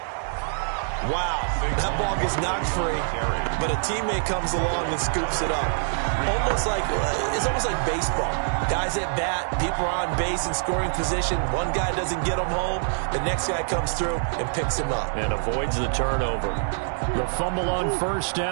Wow, that ball gets knocked free, but a teammate comes along and scoops it up. It's almost like baseball. Guys at bat, people are on base in scoring position. One guy doesn't get them home, the next guy comes through and picks him up. And avoids the turnover. The fumble on first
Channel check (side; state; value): left; silent; 62 dB below the other